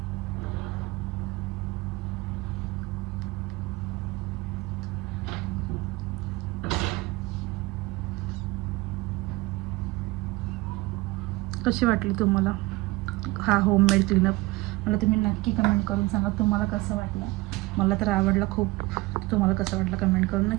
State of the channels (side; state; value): left; quieter; 20.9 dB